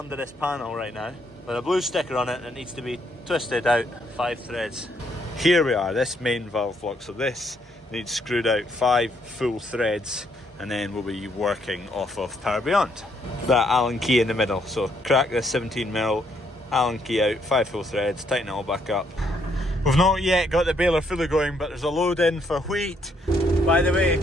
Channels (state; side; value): normal; both; correlation 0.72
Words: this panel right now, with a blue sticker on it that needs to be twisted out 5 threads. Here we are, this main valve block, so this needs screwed out 5 full threads, and then we'll be working off of Power Beyond. That Allen key in the middle, so crack this 17mm Allen key out, 5 full threads, tighten it all back up. We've not yet got the baler fully going, but there's a load in for wheat. By the way,